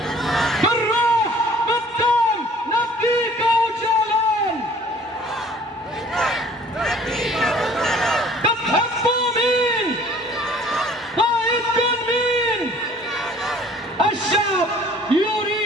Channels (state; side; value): normal; both; correlation 0.53